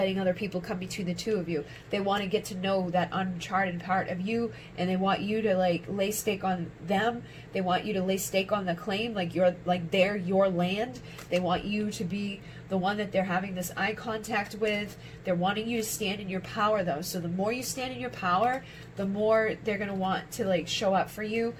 other people come between the two of you. They want to get to know that uncharted part of you, and they want you to, like, lay stake on them. They want you to lay stake on the claim, like you're, like, they're your land. They want you to be the one that they're having this eye contact with. They're wanting you to stand in your power, though. So the more you stand in your power, the more they're going to want to, like, show up for you,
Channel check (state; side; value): identical; both; correlation 1.00